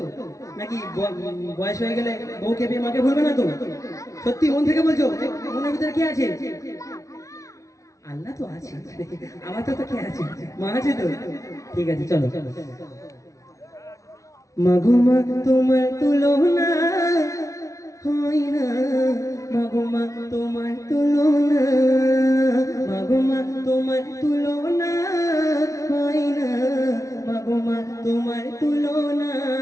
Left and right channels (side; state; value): right; late; 0.15 ms